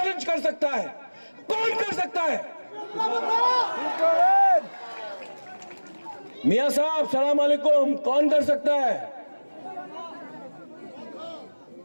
कर सकता है? कौन कर सकता है? मियां साहब सलाम अलैकुम, कौन कर सकता है?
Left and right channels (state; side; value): inverted; both; correlation -1.00